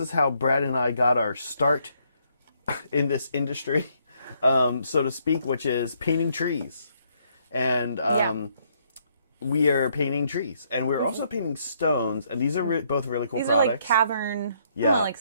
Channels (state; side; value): inverted; both; correlation -0.71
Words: how Brad and I got our start in this industry, so to speak, which is painting trees. And we are painting trees, and we're also painting stones. And these are both really cool products. These are like cavern. Yeah. Like,